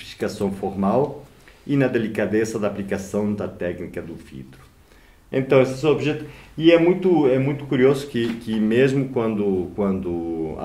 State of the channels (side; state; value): both; identical; correlation 1.00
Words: formal e na delicadeza da aplicação da técnica do vidro. Então, esses objetos... E é muito curioso que mesmo quando